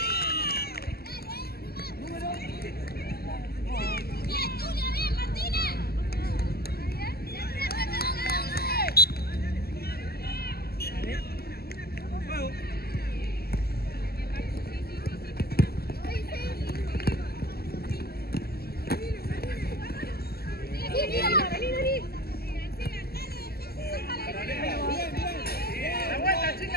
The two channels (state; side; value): late; right; 0.46 ms